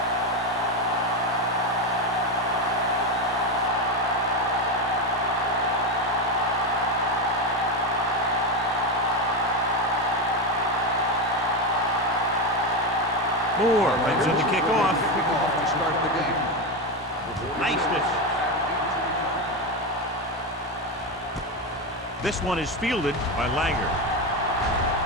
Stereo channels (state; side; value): normal; both; correlation 0.13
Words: Moore brings in the kickoff. To start the game. Niceness. This one is fielded by Langer.